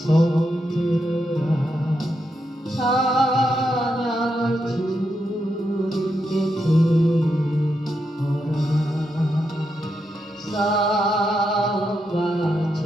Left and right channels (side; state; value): both; normal; correlation 0.83